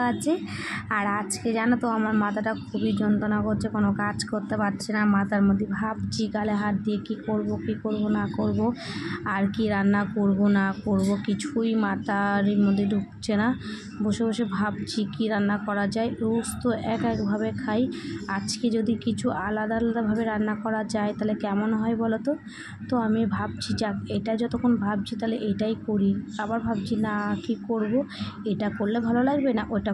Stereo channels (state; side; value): identical; both; correlation 1.00